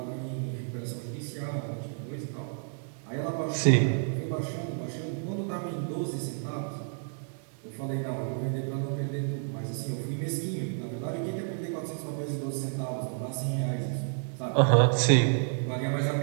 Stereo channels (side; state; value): left; silent; 57 dB below the other